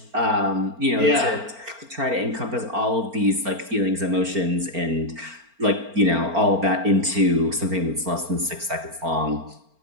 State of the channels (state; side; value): late; left; 4.4 ms